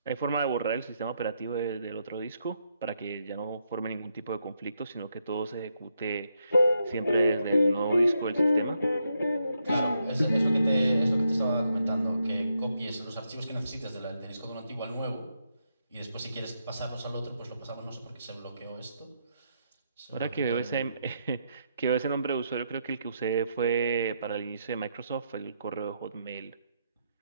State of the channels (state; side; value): inverted; both; correlation -0.79